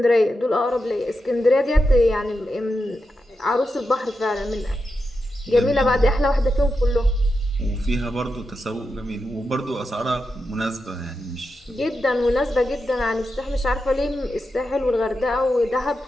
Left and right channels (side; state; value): both; normal; correlation 0.88